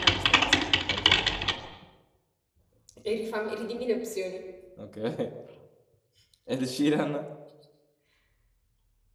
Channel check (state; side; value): identical; both; correlation 1.00